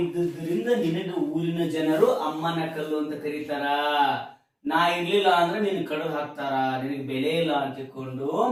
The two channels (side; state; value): both; identical; correlation 1.00